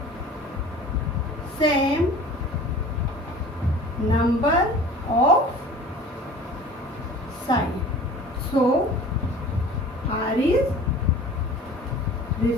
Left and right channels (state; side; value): normal; both; correlation 0.43